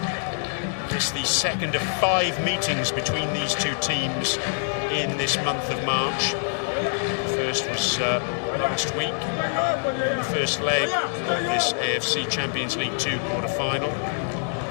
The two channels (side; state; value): right; silent; digital silence